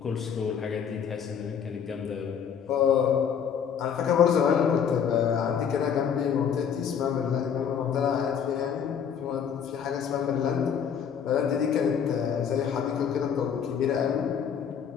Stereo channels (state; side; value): quieter; right; 7.7 dB